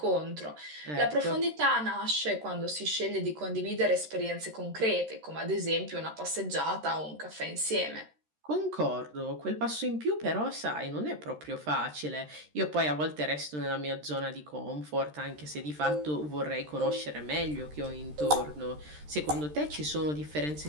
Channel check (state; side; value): late; left; 13 ms